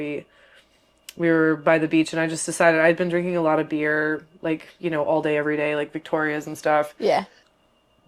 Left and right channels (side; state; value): both; identical; correlation 1.00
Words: were by the beach, and I just decided I'd been drinking a lot of beer, like, you know, all day, every day, like Victoria's and stuff. Yeah.